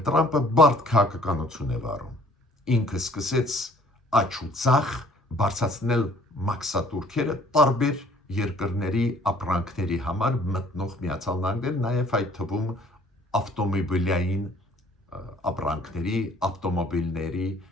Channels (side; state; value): both; normal; correlation 0.57